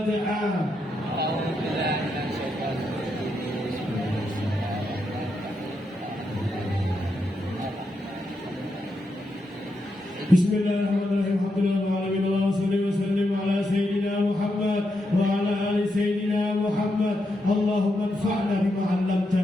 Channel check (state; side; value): normal; both; correlation 0.83